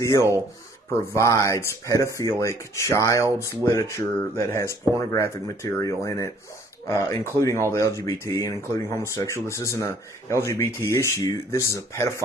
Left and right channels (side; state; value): both; normal; correlation 0.59